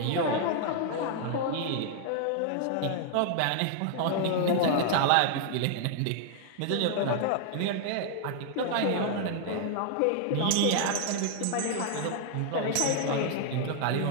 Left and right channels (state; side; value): different; both; correlation 0.00